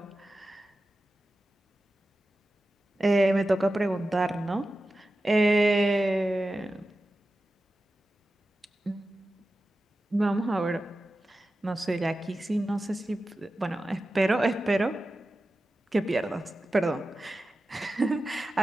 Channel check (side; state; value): both; normal; correlation 0.93